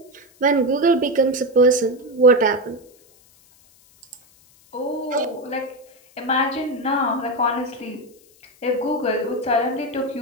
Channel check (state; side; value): noise; left; hiss, 29 dB below the sound